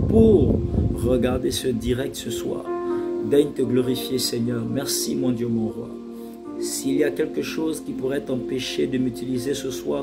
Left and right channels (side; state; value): both; identical; correlation 1.00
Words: pour regarder ce direct ce soir. Daigne te glorifier Seigneur. Merci mon Dieu, mon Roi. S'il y a quelque chose qui pourrait t'empêcher de m'utiliser ce